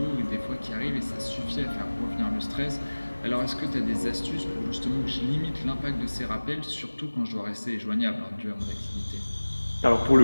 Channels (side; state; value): both; inverted; correlation -1.00